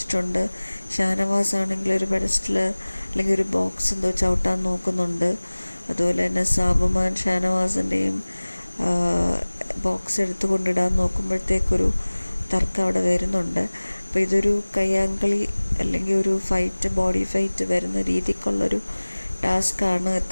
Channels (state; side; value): inverted; both; correlation -1.00